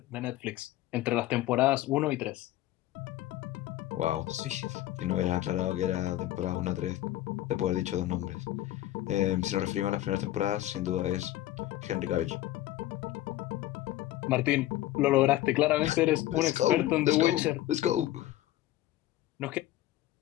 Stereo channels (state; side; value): quieter; right; 14.9 dB